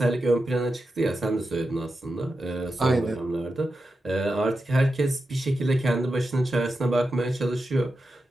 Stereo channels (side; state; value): both; normal; correlation 0.90